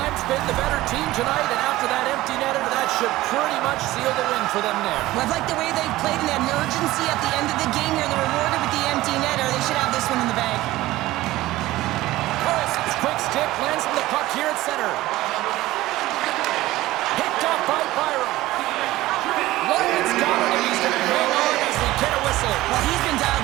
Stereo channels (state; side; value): quieter; left; 17.1 dB